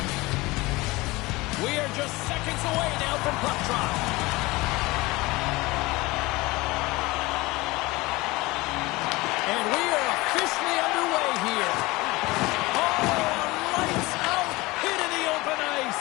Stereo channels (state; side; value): quieter; right; 21.7 dB